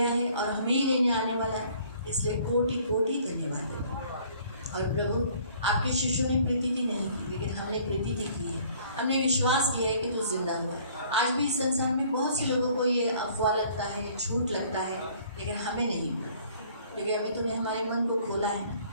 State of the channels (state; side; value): inverted; both; correlation -0.56